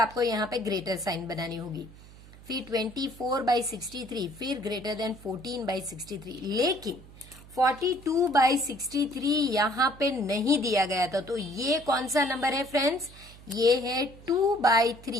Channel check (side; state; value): right; noise; hum, 20 dB below the sound